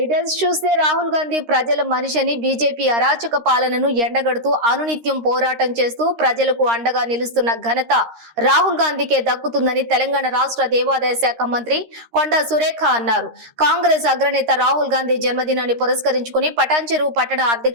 చూస్తే రాహుల్ గాంధీ ప్రజల మనిషిని బీజేపీ అరాచక పాలనను ఎండగడుతూ అనునిత్యం పోరాటం చేస్తూ ప్రజలకు అండగా నిలుస్తున్న ఘనత రాహుల్ గాంధీకే దక్కుతుందని తెలంగాణ రాష్ట్ర దేవాదాయ శాఖ మంత్రి కొండా సురేఖ అన్నారు. కాంగ్రెస్ అగ్రనేత రాహుల్ గాంధీ జన్మదినాన్ని పురస్కరించుకుని పటాన్చెరు పట్టణ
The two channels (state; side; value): late; left; 13 ms